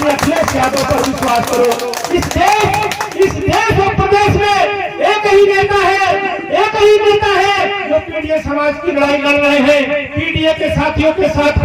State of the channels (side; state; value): both; identical; correlation 1.00